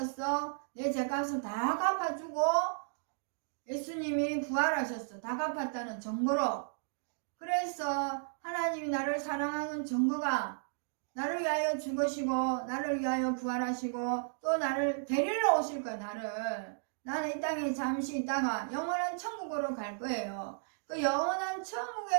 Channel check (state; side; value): silent; left; digital silence